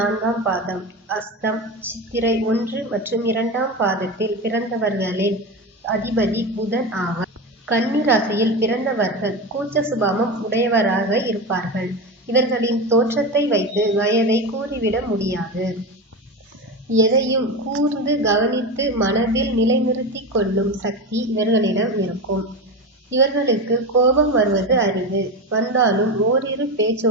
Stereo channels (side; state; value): both; normal; correlation 0.21